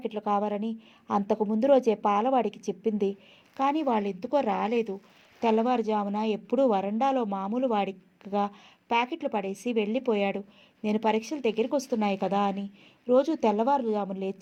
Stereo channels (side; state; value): both; identical; correlation 1.00